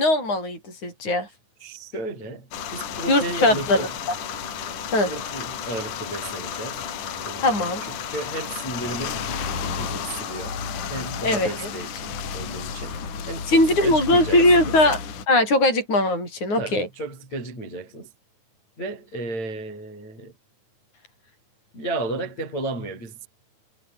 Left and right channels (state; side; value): late; right; 9.5 ms